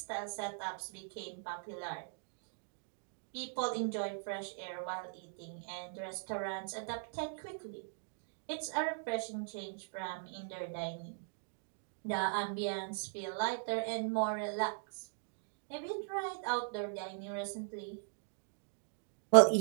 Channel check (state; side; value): silent; left; digital silence